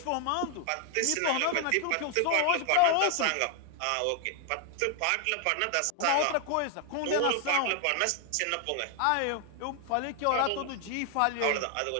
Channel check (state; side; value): different; both; correlation 0.00